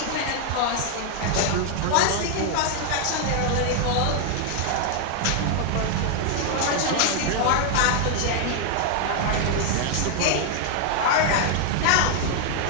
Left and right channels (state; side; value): different; both; correlation 0.00